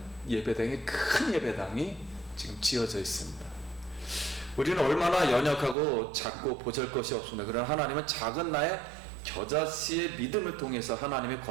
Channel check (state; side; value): drops out; left; at 5.8 s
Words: 예배당이, 큰 예배당이 지금 지어져 있습니다. 우리는 얼마나 연약하고 작고 보잘것이 없습니다. 그러나 하나님은 작은 나의 겨자씨의 믿음을 통해서 하나님의